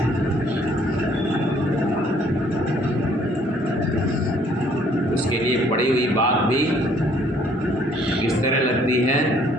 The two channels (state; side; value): normal; both; correlation 0.62